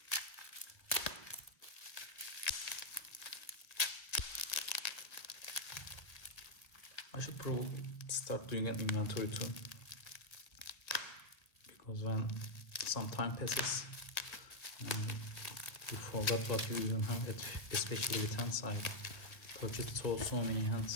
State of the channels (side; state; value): right; late; 1.3 ms